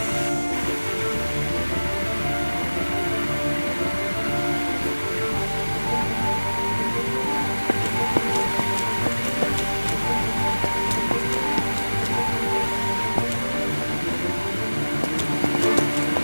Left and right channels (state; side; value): inverted; both; correlation -1.00